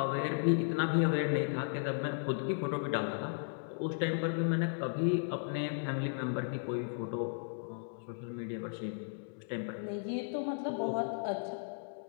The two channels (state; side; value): silent; right; digital silence